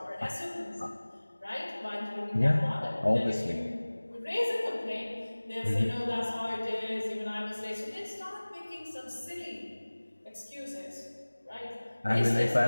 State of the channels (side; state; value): both; inverted; correlation -1.00